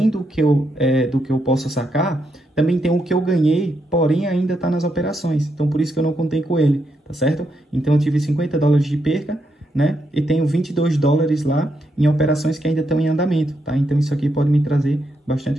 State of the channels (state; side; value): normal; both; correlation 0.80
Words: do que eu posso sacar, também tem o que eu ganhei, porém ainda está nas operações, então por isso que eu não contei com ele, tá certo? Então eu tive 50 dólares de perca, né? E tenho 22 dólares lá em operações que ainda estão em andamento, tá? Então isso aqui pode me trazer